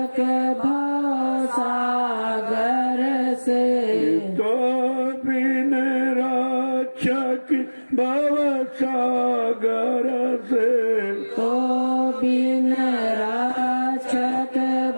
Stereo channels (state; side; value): inverted; both; correlation -1.00